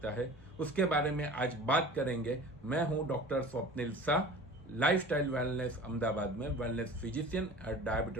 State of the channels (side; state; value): both; normal; correlation 0.41